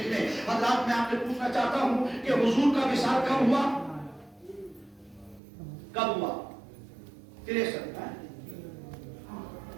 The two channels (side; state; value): left; drops out; at 5.4 s